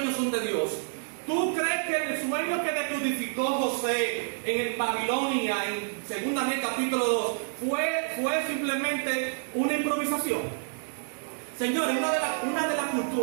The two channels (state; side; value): silent; left; 59 dB below the other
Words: son de Dios. ¿Tú crees que el sueño que decodificó José en Babilonia, en 2 Reyes capítulo 2, fue simplemente una improvisación? Señores, una de las